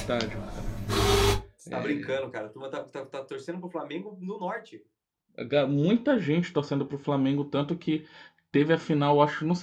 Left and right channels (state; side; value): identical; both; correlation 1.00